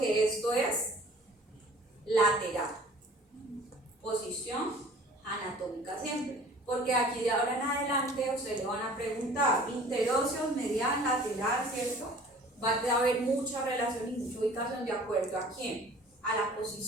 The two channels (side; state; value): both; normal; correlation 0.48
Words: esto es lateral. Posición anatómica siempre. Porque aquí de ahora en adelante ustedes le van a preguntar interóseos, medial, lateral, ¿cierto? Va a haber mucha relación y mucha ubicación de acuerdo a quién, a la